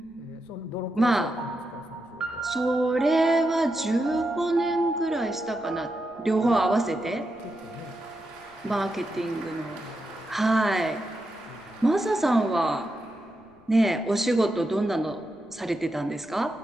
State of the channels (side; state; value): left; noise; rumble, 30 dB below the sound